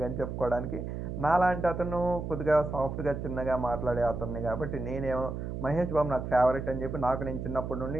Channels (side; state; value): right; noise; hum, 5 dB below the sound